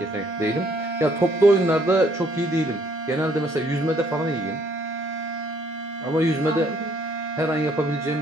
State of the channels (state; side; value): normal; both; correlation 0.66